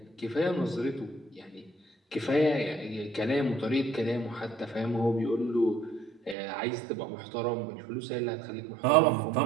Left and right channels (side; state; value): left; drops out; at 6.4 s